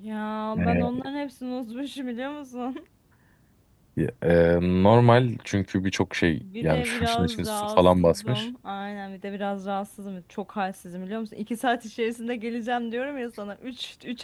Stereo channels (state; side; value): identical; both; correlation 1.00